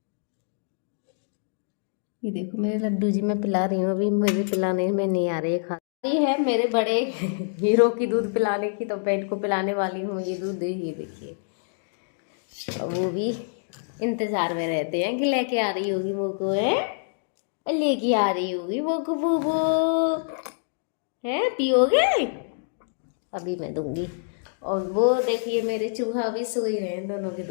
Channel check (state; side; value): silent; right; digital silence